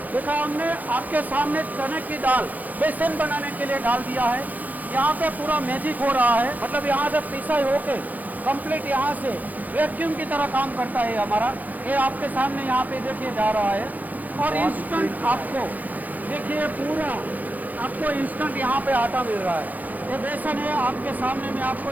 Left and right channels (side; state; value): left; late; 0.081 ms